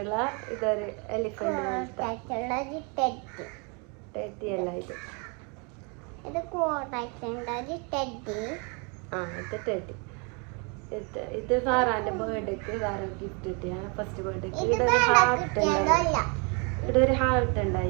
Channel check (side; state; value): left; quieter; 33.7 dB